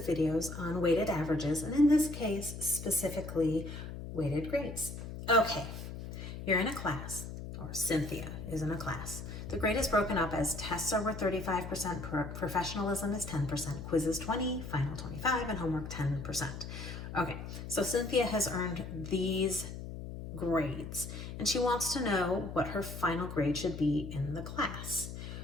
videos on weighted averages, and in this case, specifically weighted grades. Okay, you're in a class, or Cynthia is in a class. The grade is broken up as tests are worth 35%, professionalism is 10%, quizzes 20, final 25, and homework 10%. Okay, so Cynthia has earned these grades, and she wants to know what her final grade should be in the class.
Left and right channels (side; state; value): left; noise; hum, 9 dB below the sound